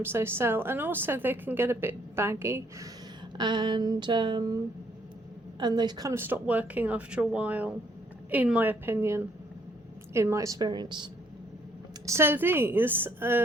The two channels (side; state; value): both; normal; correlation 0.67